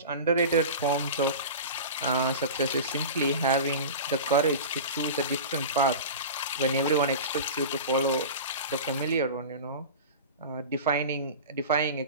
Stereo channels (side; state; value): both; inverted; correlation -0.31